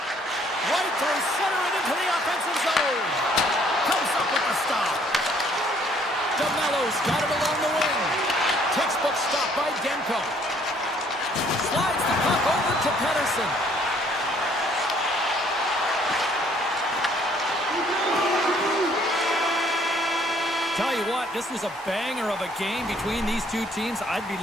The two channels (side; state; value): both; normal; correlation 0.62